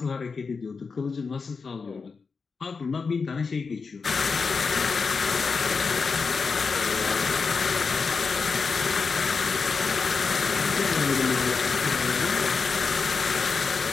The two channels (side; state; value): right; quieter; 4.9 dB